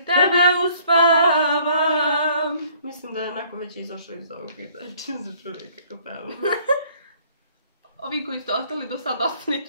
Tebe uspavam. Mislim da je onako već izašao iz ovog videa. Čim se čuli kako pevam. Ovi koji ste ostali do sada,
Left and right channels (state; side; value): inverted; both; correlation -0.58